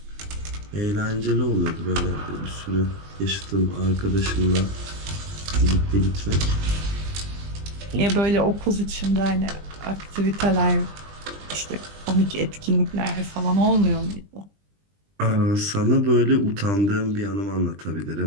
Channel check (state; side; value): late; left; 20 ms